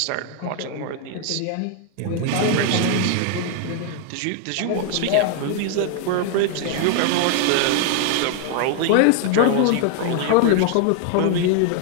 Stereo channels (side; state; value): both; different; correlation 0.00